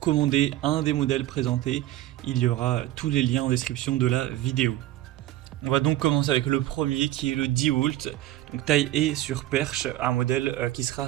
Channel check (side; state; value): left; quieter; 14.6 dB